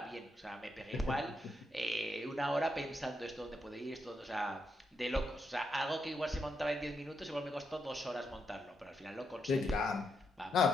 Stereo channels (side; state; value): both; normal; correlation 0.81